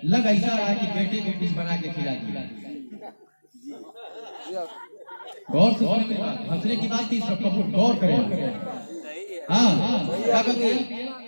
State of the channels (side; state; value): both; inverted; correlation -1.00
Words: लग ऐसा रहा है कि बेटे को कुछ बना के खिला दिया। गौर से हंसने की बात थी, सब गौर करें। हाँ, क्या कहते हैं,